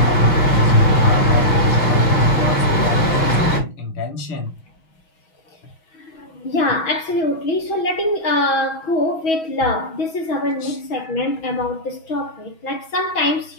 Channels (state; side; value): late; right; 6.2 ms